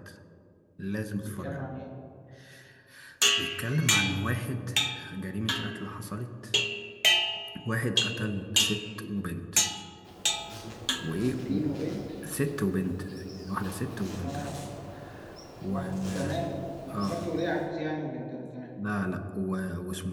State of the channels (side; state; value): both; identical; correlation 1.00